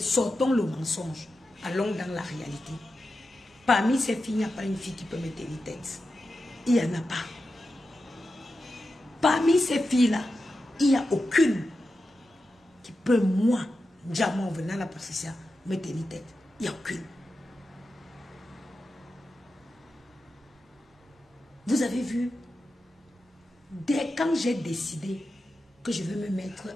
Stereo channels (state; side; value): normal; both; correlation 0.91